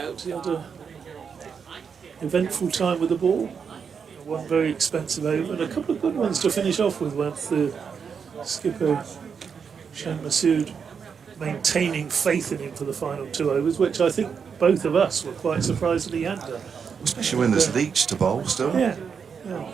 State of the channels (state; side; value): quieter; left; 6.4 dB